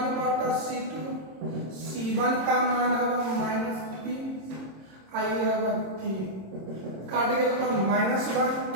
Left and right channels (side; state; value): left; late; 26 ms